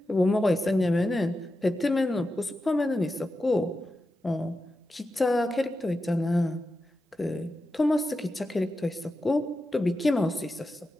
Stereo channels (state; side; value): normal; both; correlation 0.90